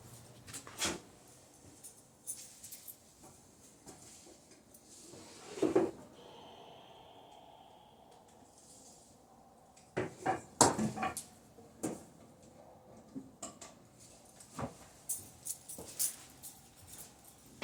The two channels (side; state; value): both; identical; correlation 1.00